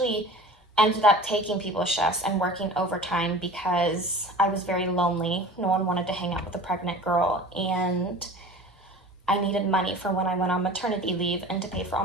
ended up taking people's shifts and working overtime because I was very lonely. No one wanted to hang out with a pregnant girl, and I needed money for when I went on maternity leave and to pay for all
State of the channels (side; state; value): both; normal; correlation 0.40